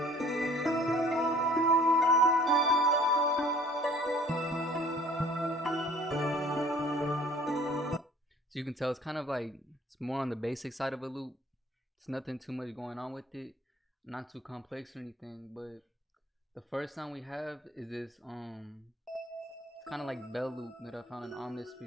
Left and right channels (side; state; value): both; normal; correlation 0.53